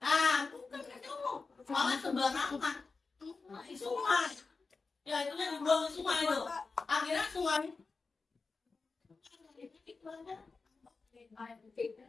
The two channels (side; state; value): right; quieter; 4.3 dB